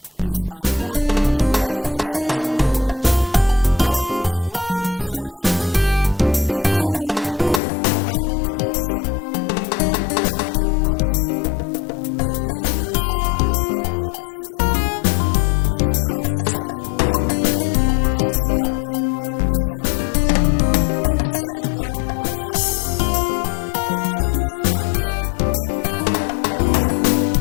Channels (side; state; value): right; drops out; at 7.6 s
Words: is at work in many nations of the world. God is working silently in turning people back to himself and blocking off the things that Satan has done all these years. We are seeing incredible things happening on mission fields. In Senegal, for example, the churches are being impacted by Capro,